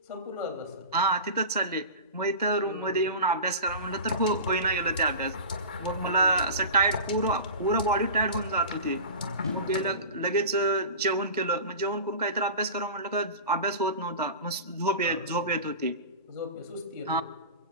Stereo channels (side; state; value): both; inverted; correlation -0.32